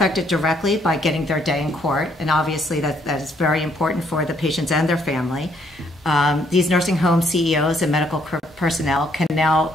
directly by getting their day in court, and obviously that is very important for the patients and their family. These nursing home CEOs and medical personnel can now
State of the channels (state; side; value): normal; both; correlation 0.69